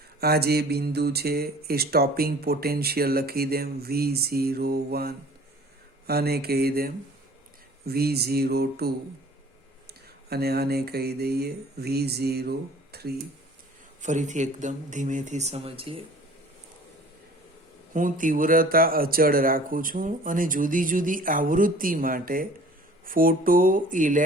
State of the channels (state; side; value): normal; both; correlation 0.49